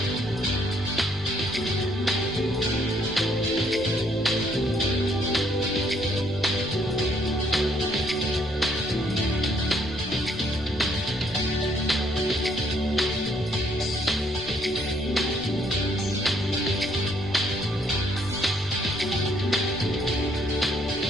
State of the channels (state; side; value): noise; left; rumble, 19 dB below the sound